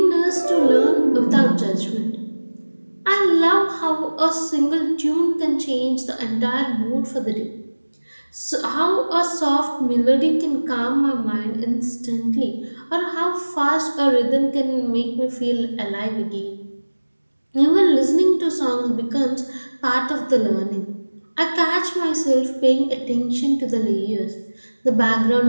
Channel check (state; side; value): inverted; both; correlation -1.00